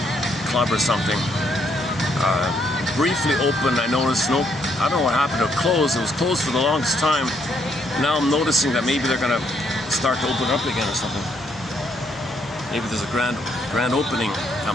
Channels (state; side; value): normal; both; correlation 0.72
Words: club or something. Briefly opened. I noticed. Nope. I don't know what happened. It closed. It was closed for the longest time. Now I'm noticing that maybe they're gonna start to open up again or something. Maybe there's a grand opening